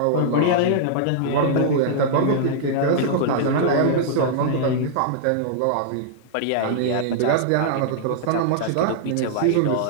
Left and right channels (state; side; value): different; both; correlation -0.01